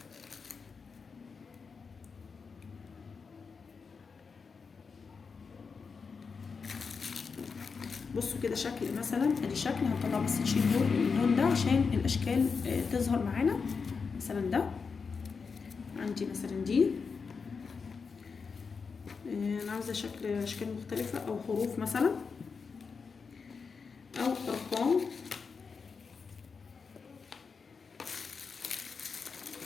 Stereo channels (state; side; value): quieter; right; 5.3 dB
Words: بصوا كده شكل مثلا، ادي شكل هنطلع بس نشيل اللون ده عشان الاشكال تظهر معانا. مثلا ده عندي مثلا دي، انا عاوزه اشكال مختلفه او حروف مثلا او ارقام.